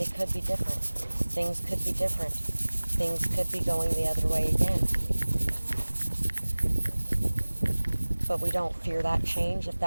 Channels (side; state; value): both; inverted; correlation -1.00